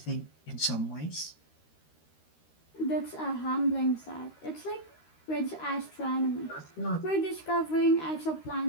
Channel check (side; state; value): right; late; 13 ms